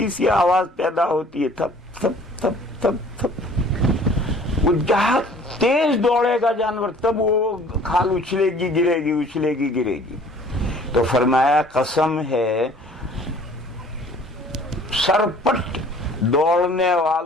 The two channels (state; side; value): normal; both; correlation 0.52